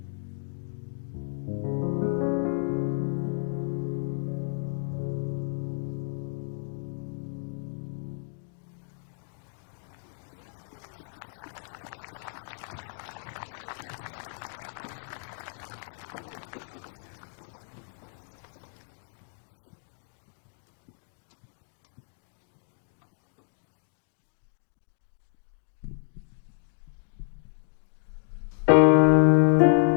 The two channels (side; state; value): right; silent; digital silence